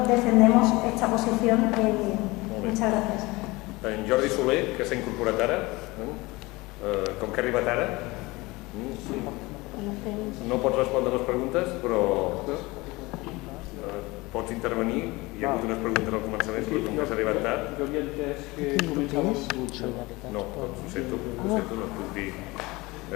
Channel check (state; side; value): quieter; right; 22.4 dB